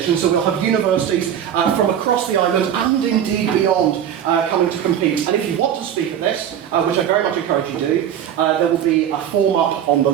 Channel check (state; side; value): quieter; left; 9.6 dB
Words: so we'll have universities from across the island and indeed beyond coming to compete. And if you want to speak at this, which I very much encourage you to do, there will be a form up on the